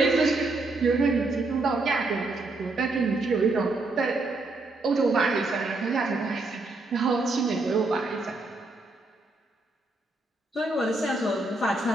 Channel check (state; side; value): quieter; left; 3.1 dB